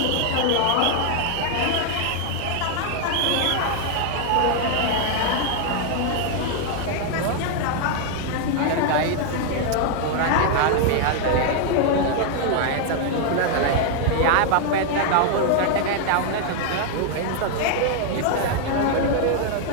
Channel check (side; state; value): both; different; correlation 0.00